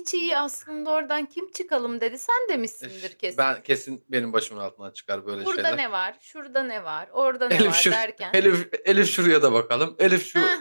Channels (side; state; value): both; inverted; correlation -1.00